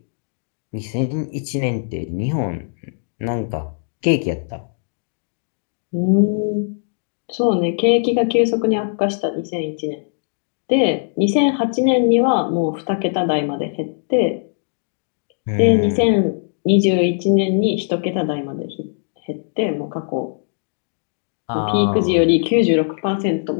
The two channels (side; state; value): right; silent; digital silence